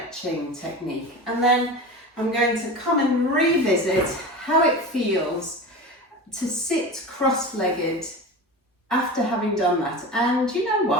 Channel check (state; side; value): normal; both; correlation 0.29